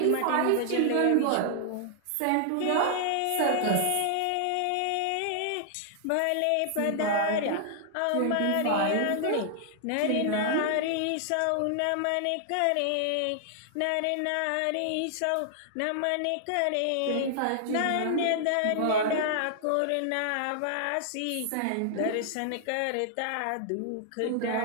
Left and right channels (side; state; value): both; different; correlation -0.01